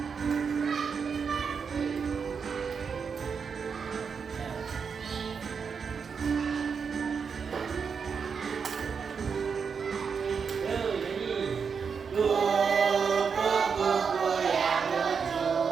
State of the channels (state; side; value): quieter; left; 6.0 dB